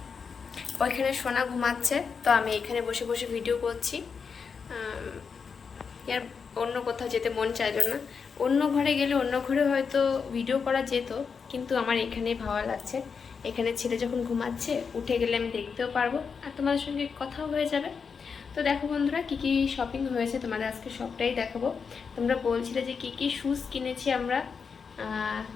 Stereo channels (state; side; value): quieter; right; 5.8 dB